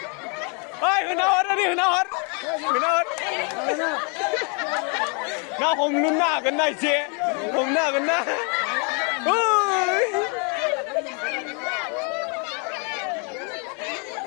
Oi, hunawar. Nào hùng nun na cái này chị, hùng na cái na. Ôi.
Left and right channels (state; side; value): quieter; right; 36.5 dB